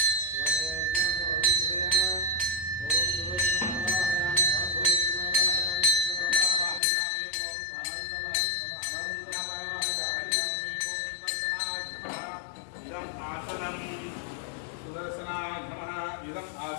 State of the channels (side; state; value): right; drops out; at 6.8 s